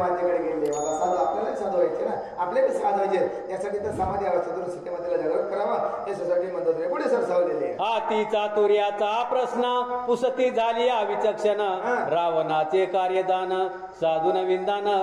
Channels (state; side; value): identical; both; correlation 1.00